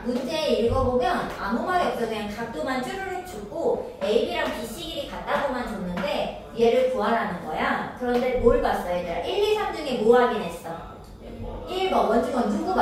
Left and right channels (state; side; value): identical; both; correlation 1.00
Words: 문제 읽어보면 아무 말이 없어. 그냥 각도만 쭈르륵 주고 AB랑 BC 길이 같다고만 줬는데 얘를 구하라는 거야. 그런데 뭘 봤어 얘들아? 1, 2, 3 중에 뭐 확인했어? 1번 원주건 누구